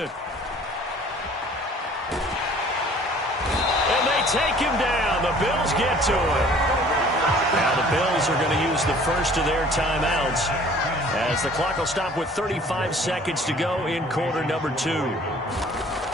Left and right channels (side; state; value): both; normal; correlation 0.52